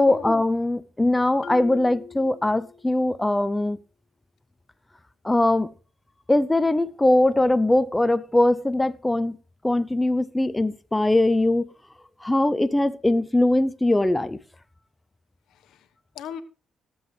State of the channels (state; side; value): normal; both; correlation 0.98